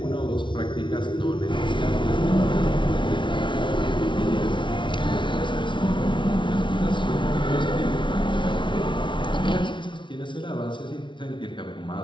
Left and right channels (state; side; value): late; right; 0.24 ms